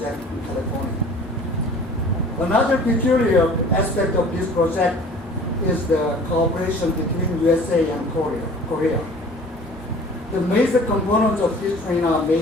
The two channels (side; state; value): both; normal; correlation 0.47